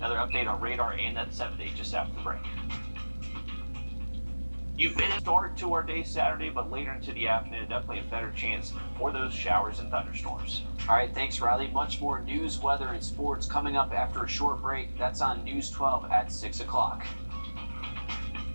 update on radar and that 7-day just after the break. You've been a start to our day Saturday, but later into the afternoon, definitely a better chance for those showers and thunderstorms. All right, thanks, Riley. Much more news, weather, and sports coming up after a short break. That's on News 12 at 6 o'clock.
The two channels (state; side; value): inverted; both; correlation -1.00